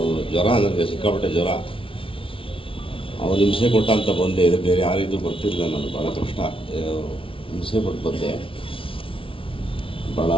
ಜ್ವರ, ನನಗೆ ಸಿಕ್ಕಾಪಟ್ಟೆ ಜ್ವರ. ಅವನು ಹಿಂಸೆ ಕೊಟ್ಟ ಅಂತ ಬಂದೆ. ಇದು ಬೇರೆ ಯಾರಿಗೂ ಬರ್ತಿರಲಿಲ್ಲ, ನಾನು ಭಾಳ ಕಷ್ಟ ಹಿಂಸೆ ಕೊಟ್ಟು ಬಂದೆ. ಭಾಳ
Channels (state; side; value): late; right; 0.25 ms